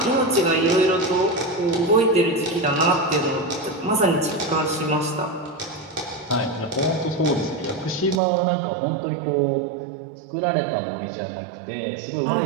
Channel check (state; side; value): drops out; left; at 8.2 s